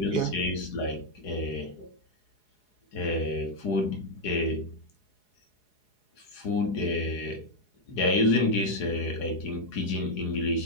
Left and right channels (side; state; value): right; late; 4.8 ms